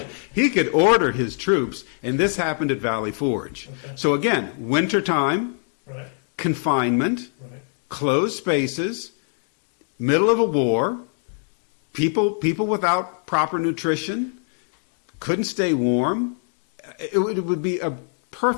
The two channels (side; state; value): right; silent; 57 dB below the other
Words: could order his troops, and this happened at Valley Forge. Okay. So again, wintertime, Right. confinement, Right. closed spaces, middle of a war, people without proper nutrition, couldn't stay warm. It would be a